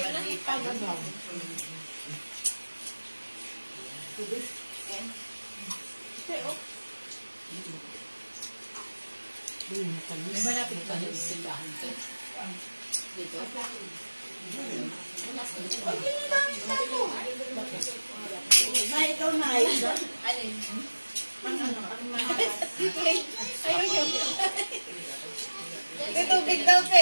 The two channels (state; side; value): inverted; both; correlation -1.00